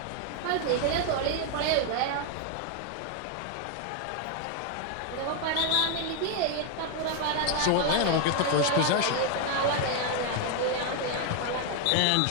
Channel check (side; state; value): both; different; correlation 0.00